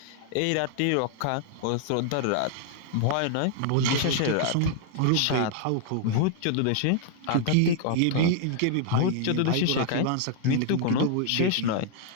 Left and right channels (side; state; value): both; different; correlation 0.00